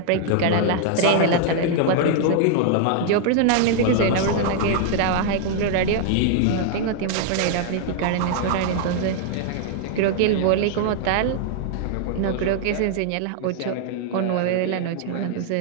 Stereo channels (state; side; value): different; both; correlation 0.00